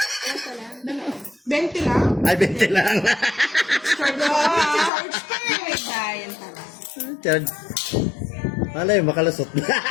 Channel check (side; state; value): right; drops out; at 4.9 s